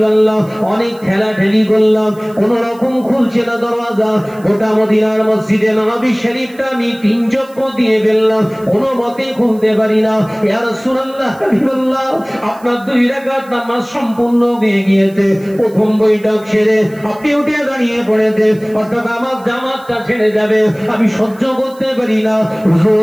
অনেক ঠেলাঠেলি করলাম, কোন রকম খুলছে না দরজা। গোটা মদিনার মসজিদে নববী শরীফটা আমি 3 চক্কর দিয়ে ফেললাম, কোনো মতে খুলতে পারি না। ইয়া রাসূলুল্লাহ হাবিবাল্লাহ আপনার 2 রাকাত নামাজ সম্পূর্ণ হয়ে গিয়েছে। প্রথম বৈঠক সেরে আপনি উঠে দাঁড়িয়ে পড়েছে, অর্থাৎ আমার জামাতটা ছেড়ে যাবে, আমি সহ্য করতে পারি না।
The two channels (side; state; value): right; noise; hiss, 27 dB below the sound